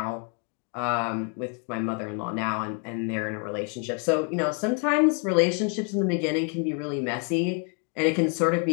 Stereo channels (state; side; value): quieter; right; 38.2 dB